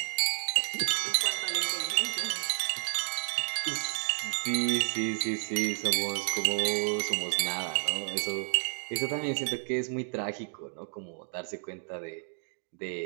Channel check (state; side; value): silent; left; 57 dB below the other